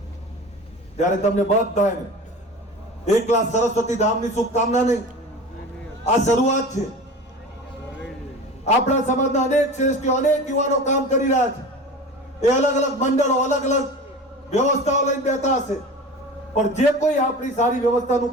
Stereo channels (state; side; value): normal; both; correlation 0.35